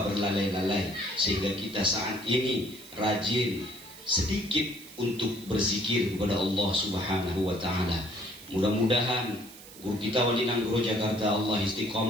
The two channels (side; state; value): right; noise; hiss, 18 dB below the sound